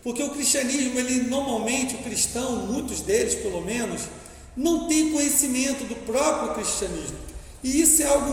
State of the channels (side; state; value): both; identical; correlation 1.00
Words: porque o cristianismo, normalmente, o cristão, muitos deles pelo menos, não tem conhecimento do próprio cristianismo, e isso é